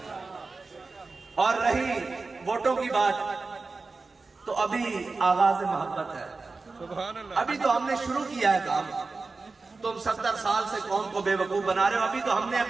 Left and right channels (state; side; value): quieter; left; 3.9 dB